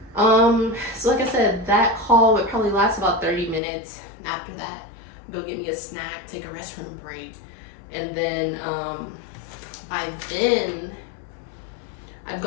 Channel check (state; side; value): drops out; right; at 3.6 s